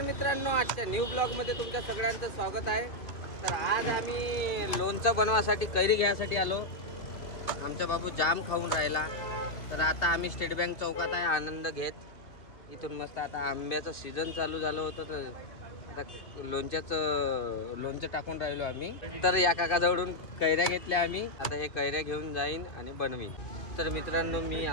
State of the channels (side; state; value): right; late; 2.5 ms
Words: मित्रांनो, आजच्या न्यू ब्लॉगमध्ये तुमच्या सगळ्यांचं स्वागत आहे. तर आज आम्ही लोणचं बनवासाठी कैरी घ्यायसाठी आलो. आमचा बाबू जाम खाऊन राहिला. तर आता आम्ही स्टेट बँक चौकात आहे आनंद घेत. इथून मस्त आता आंब्याचं सीझन चालू झालं होतं, तर आता लोणचं टाकून राहिलो आम्ही. तर या काकाजवळून कैऱ्या घेतल्या आम्ही. आता हे कैऱ्या घेऊन जाईन आणि बनवीन. तर मित्रांनो, मी